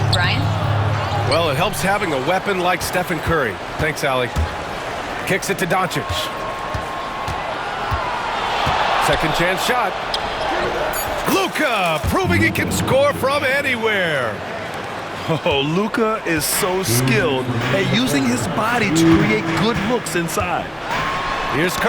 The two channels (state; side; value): identical; both; correlation 1.00